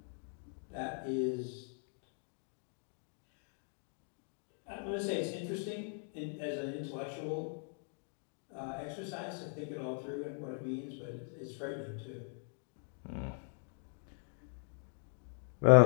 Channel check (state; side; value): silent; right; 52 dB below the other